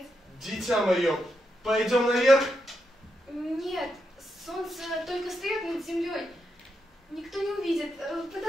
Дитя мое, пойдем наверх? Нет, солнце только встает над землей. Никто не увидит.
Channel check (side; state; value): both; normal; correlation 0.84